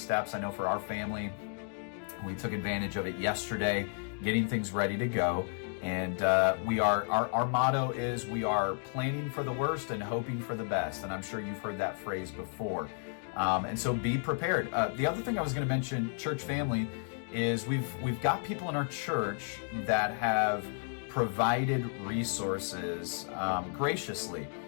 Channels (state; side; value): silent; right; 56 dB below the other